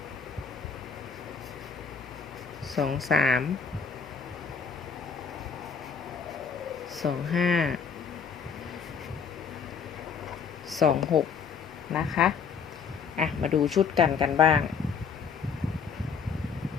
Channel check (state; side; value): quieter; right; 6.2 dB